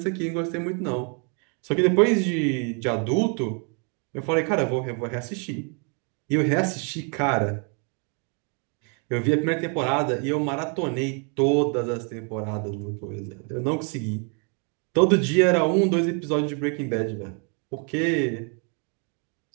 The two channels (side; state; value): left; quieter; 38.2 dB